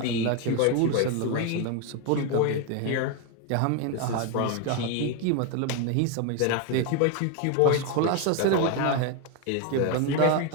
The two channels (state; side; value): different; both; correlation 0.01